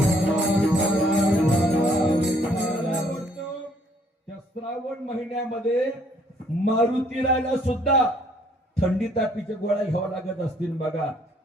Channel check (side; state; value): both; normal; correlation 0.64